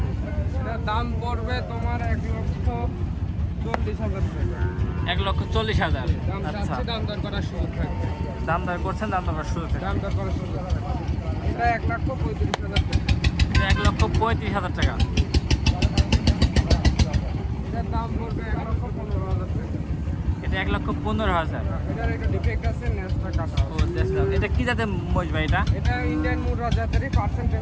এটা দাম পড়বে তোমার 1,40,000 টাকা। 1,40,000। দাম আচ্ছা, চাচ্ছি, দাম দর করার সুযোগ থাকবে। দাম দর করছেন, দাম দর করার শুরু থেকে দাম দর করার সুযোগ থাকবে। এটা 1,35,000 টাকা। এটা 1,35,000 টাকা। এটার দাম পড়বে 1,15,000 টাকা। এটা 1,15,000। এটার একটা ডিফেক্ট আছে, নেসটা কাটা। ও দেখলাম। এটা কি জাতের মহিষ ভাই? এটা ইন্ডিয়ান মুরা জাতেরই,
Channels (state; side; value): identical; both; correlation 1.00